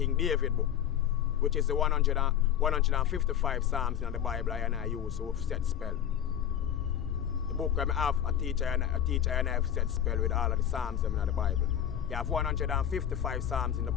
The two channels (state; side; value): quieter; right; 9.9 dB